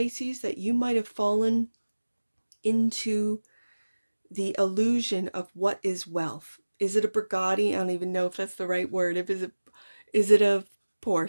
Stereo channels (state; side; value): inverted; both; correlation -1.00